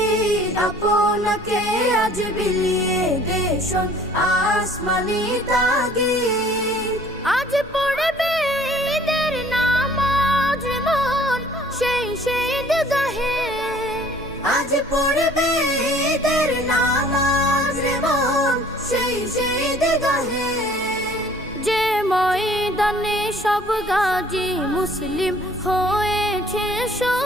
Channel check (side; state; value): both; normal; correlation 0.54